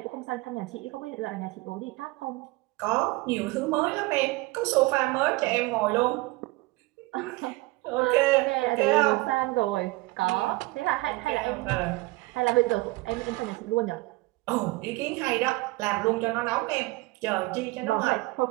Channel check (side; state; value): left; quieter; 22.1 dB